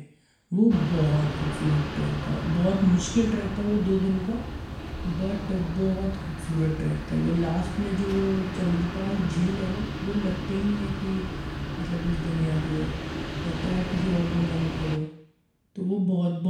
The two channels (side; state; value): both; identical; correlation 1.00